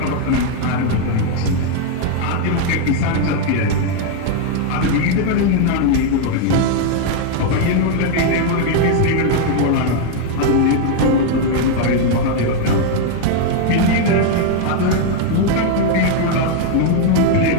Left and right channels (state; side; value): different; both; correlation 0.00